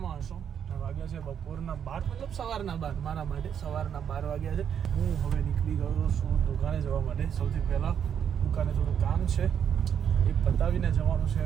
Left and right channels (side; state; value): left; quieter; 8.3 dB